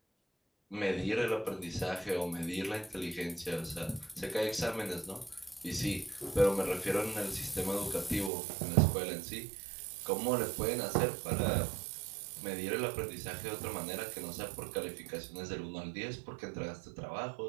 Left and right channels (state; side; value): drops out; left; at 8.3 s